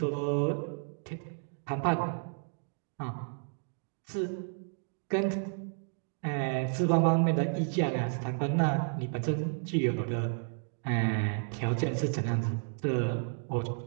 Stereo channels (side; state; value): left; silent; 56 dB below the other